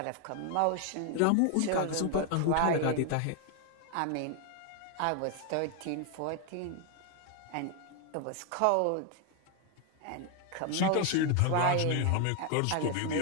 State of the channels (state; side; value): different; both; correlation 0.01